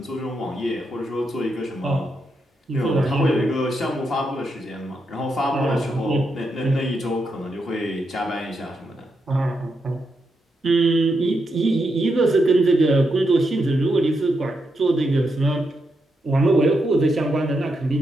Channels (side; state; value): both; normal; correlation 0.83